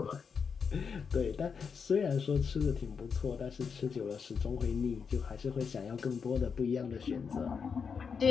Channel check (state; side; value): quieter; right; 6.0 dB